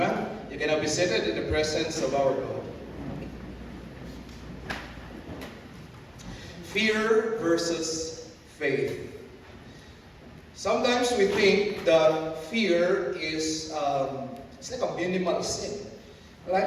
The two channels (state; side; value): identical; both; correlation 1.00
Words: You can now be seated in the presence of our God. Fear versus faith. Sometimes we think that fear is it's like a minimal sin. Like